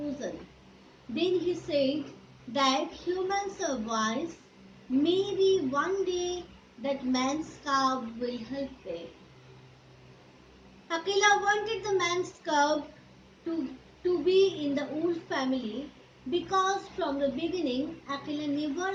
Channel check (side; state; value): both; identical; correlation 1.00